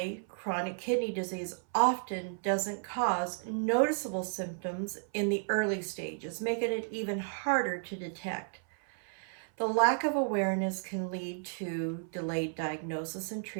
chronic kidney disease often doesn't cause noticeable symptoms in the early stages, making it even harder to detect. The lack of awareness can lead to delayed diagnosis and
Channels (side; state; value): left; silent; 56 dB below the other